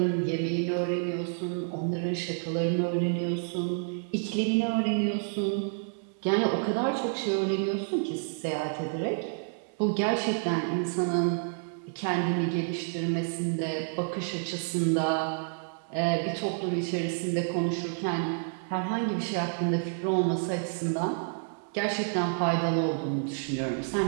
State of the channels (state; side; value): silent; left; 58 dB below the other